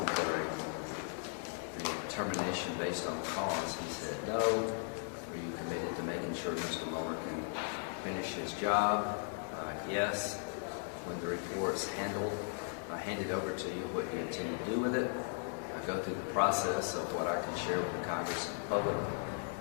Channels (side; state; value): right; silent; 53 dB below the other